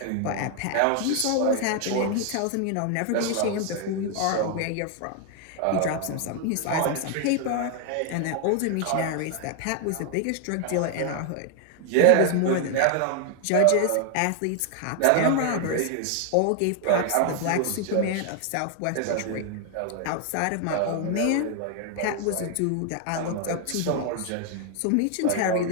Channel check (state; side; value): different; both; correlation 0.00